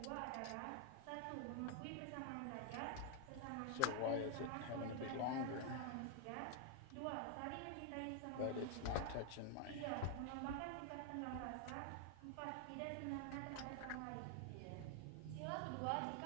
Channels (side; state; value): both; different; correlation 0.00